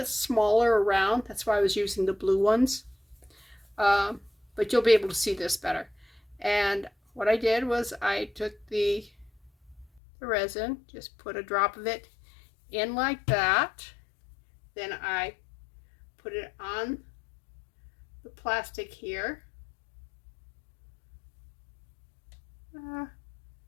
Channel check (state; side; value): drops out; right; at 10.0 s